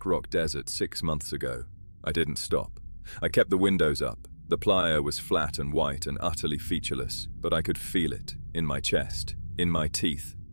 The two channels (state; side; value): inverted; both; correlation -1.00